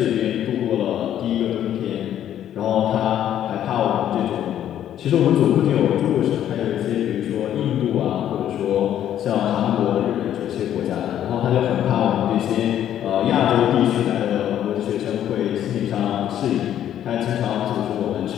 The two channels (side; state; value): right; quieter; 10.9 dB